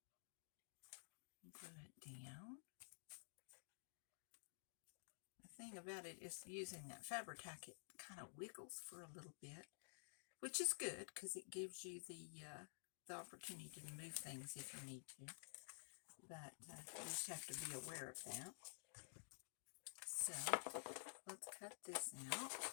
Glue it down. The thing about it is using that Fabri-Tac, it kind of wiggles for a little bit, which is good because it gives you the opportunity to move things if you need to. But you just have to be aware of that. So let's cut this out,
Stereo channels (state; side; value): silent; right; digital silence